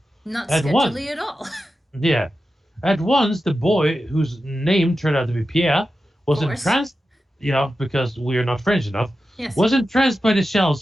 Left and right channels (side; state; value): both; normal; correlation 0.92